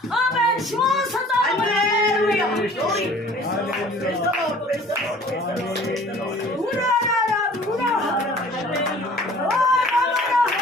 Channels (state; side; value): normal; both; correlation 0.50